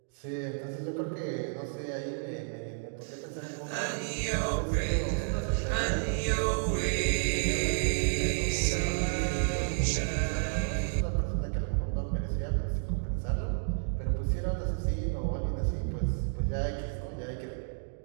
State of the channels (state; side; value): silent; left; digital silence